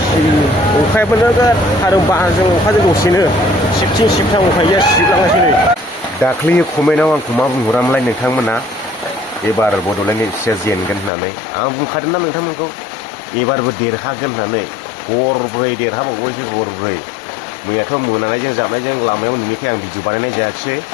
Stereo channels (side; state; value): right; drops out; at 11.1 s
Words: अखायाबो नोगोद आरो बारजों अखाजों दसेनो सिबथिं सिबथां उफाय गैया सिबलांगासिनो नै दाख्लै कमेन्टआव आंखौ मा बुंहरामोनलाय नोंथांमोना एबार बड'लेण्ड एफसिआ जेनगोन होननानै आं बुंखादोंना नोंथांमोनखौ एबारबो देरहागोन होननानै गरब्रै देरहाबावबायसो गरब्रै मैयाथ' मोनानायजों जाबनायजों लामायाव नुनायखाय आं भिडिअ बानायनाय जायाखिसै